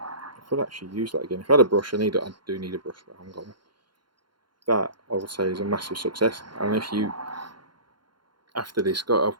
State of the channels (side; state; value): left; late; 0.72 ms